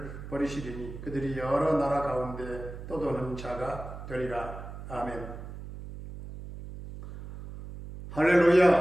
버리시리니 그들이 여러 나라 가운데 떠도는 자가 되리라. 아멘.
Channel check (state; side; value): noise; right; hum, 11 dB below the sound